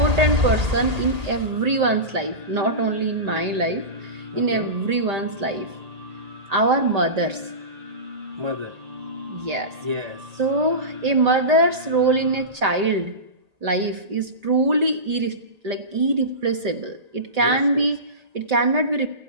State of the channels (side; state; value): left; late; 1.8 ms